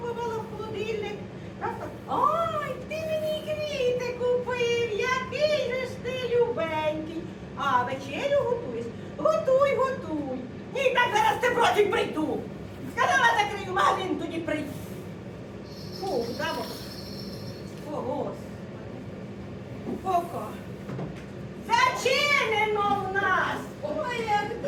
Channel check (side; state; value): both; identical; correlation 1.00